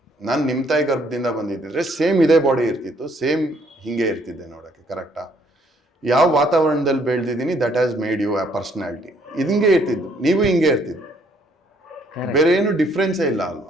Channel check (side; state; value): both; normal; correlation 0.66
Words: ನಾನು ನಿಮ್ಮ ತಾಯಿ ಗರ್ಭದಿಂದ ಬಂದಿದ್ದಿದ್ರೆ ಸೇಮ್ ಇದೇ ಬಾಡಿ ಇರ್ತಿತ್ತು, ಸೇಮ್ ಹಿಂಗೆ ಇರ್ತಿದ್ದೆ ನೋಡೋಕ್ಕೆ, ಕರೆಕ್ಟಾ? ಯಾವ ವಾತಾವರಣದಲ್ಲಿ ಬೆಳೆದಿದ್ದೀನಿ ದಟ್ ಹ್ಯಾಸ್ ಮೇಡ್ ಯು ಆ ಪರ್ಸ್ನಾಲಿಟಿ. ಇದು ಹಿಂಗೆ ಇರ್ತಿದ್ದು, ನೀವು ಹಿಂಗೆ ಇರ್ತಿದ್ದು, ಬೇರೆ ಏನು ಡಿಫ್ರೆನ್ಸೇ ಇಲ್ಲ